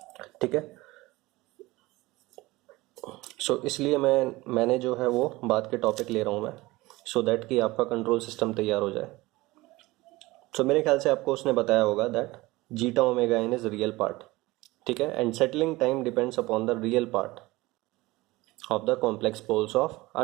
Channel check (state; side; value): quieter; left; 20.3 dB